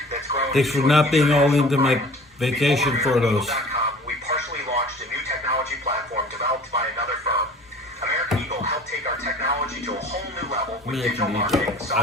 that's grown. Thanks for not being all into my vacation photos. We partially launched a new technology platform developed by another firm. American Eagle helped take our technology to a whole new level with digital marketing, I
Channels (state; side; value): normal; both; correlation 0.46